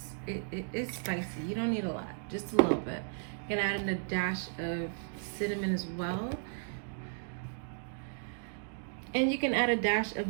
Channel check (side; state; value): left; silent; digital silence